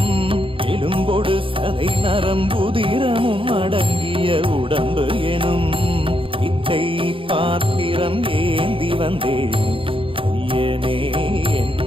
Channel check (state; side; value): late; left; 0.25 ms